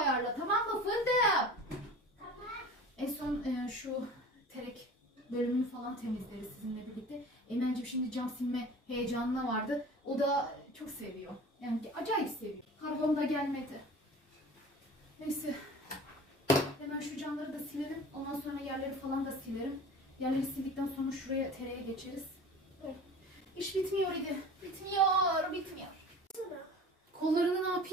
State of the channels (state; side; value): normal; both; correlation 0.40